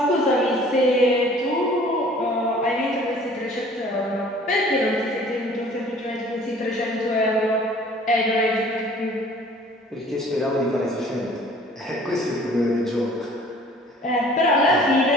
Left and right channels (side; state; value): both; normal; correlation 0.51